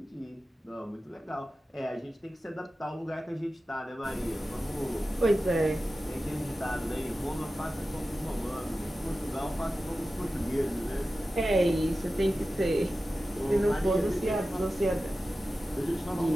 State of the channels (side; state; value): both; normal; correlation 0.94